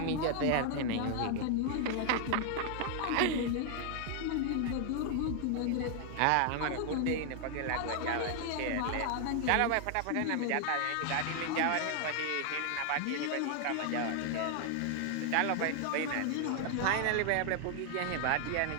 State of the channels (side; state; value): both; different; correlation 0.00